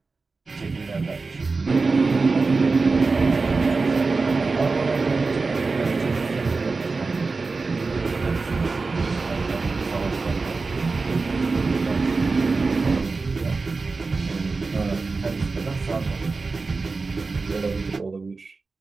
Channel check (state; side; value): quieter; left; 4.1 dB